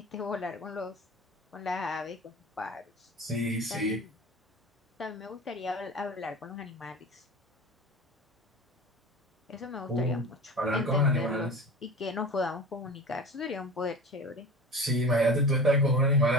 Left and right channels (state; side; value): normal; both; correlation 0.34